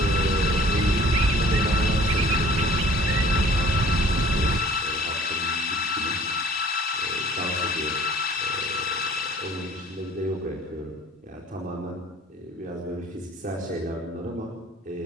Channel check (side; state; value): both; normal; correlation 0.52